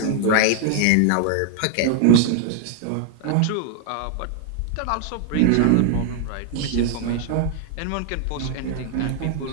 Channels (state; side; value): different; both; correlation 0.00